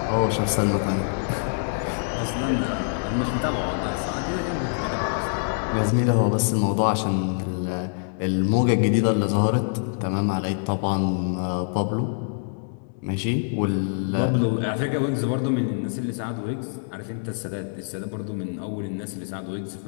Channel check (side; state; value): right; silent; digital silence